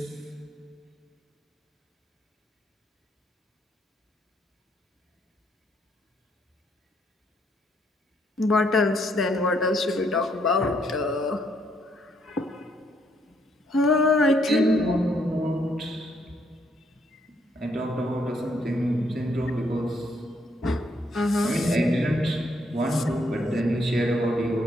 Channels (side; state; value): both; normal; correlation 0.72